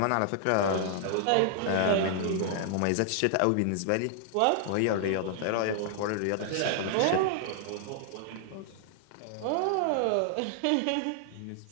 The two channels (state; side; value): different; both; correlation -0.01